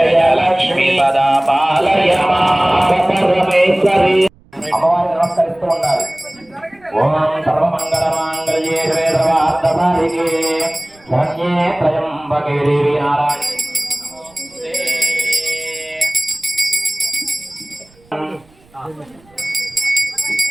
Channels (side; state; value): right; noise; rumble, 30 dB below the sound